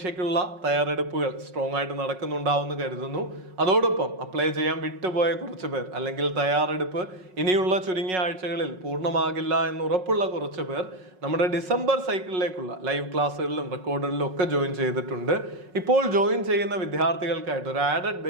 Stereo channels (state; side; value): late; left; 5.4 ms